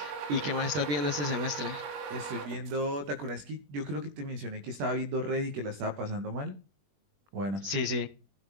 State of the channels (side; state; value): left; late; 21 ms